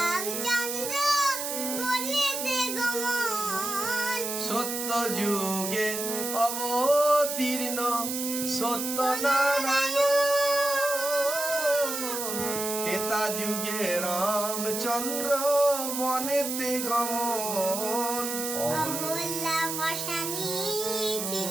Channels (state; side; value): noise; right; hiss, 4 dB below the sound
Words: বনেতে গমন। সত্য যুগে অবতীর্ণ সত্যনারায়ণ, ত্রেতা যুগে রামচন্দ্র বনেতে গমন। অহল্যা পাশানি